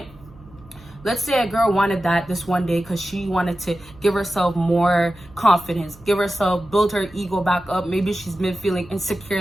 Let's say a girl wanted that this one day because she wanted to give herself more confidence, give herself, build her ego back up. Maybe she's been feeling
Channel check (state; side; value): noise; right; hum, 24 dB below the sound